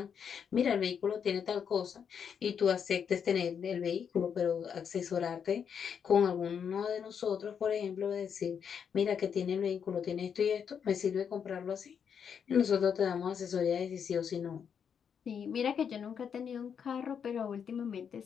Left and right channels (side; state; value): right; quieter; 7.4 dB